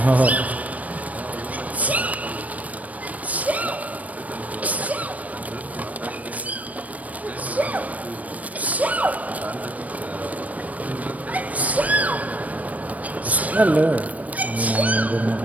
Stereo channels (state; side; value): late; left; 0.071 ms